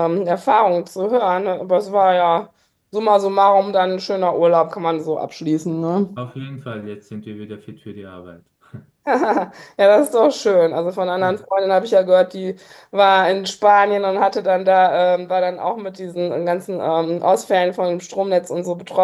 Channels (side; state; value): both; identical; correlation 1.00